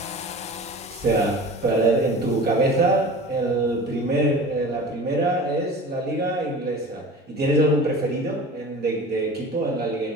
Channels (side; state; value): both; normal; correlation 0.38